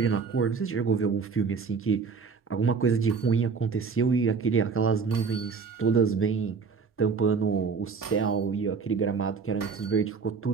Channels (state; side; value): quieter; left; 5.3 dB